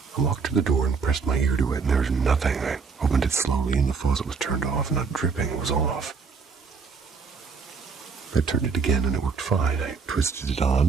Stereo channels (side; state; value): left; quieter; 5.1 dB